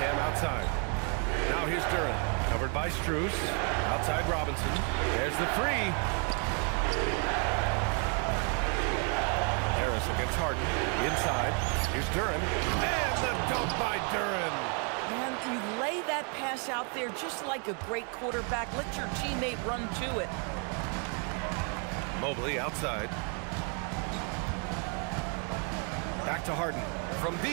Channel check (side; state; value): left; quieter; 38.9 dB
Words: outside. Now here's Duren. Covered by Strus. Outside Robinson. There's the 3. Harris against Harden. Inside. Here's Duren. And the dunk by Duren. And you lay that pass out there just like a great quarterback. Let your teammate run to it. Mobley outside. Back to Harden. From